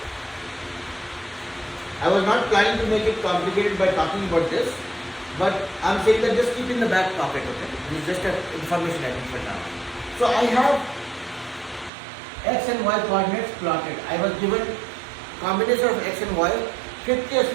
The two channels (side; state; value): left; drops out; at 11.9 s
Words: I was not planning to make it complicated by talking about this, but I'm saying that just keep in the back pocket. Okay. This is just an information I think for now. So I have x and y coordinates plotted. I was given combination of x and y, 50 or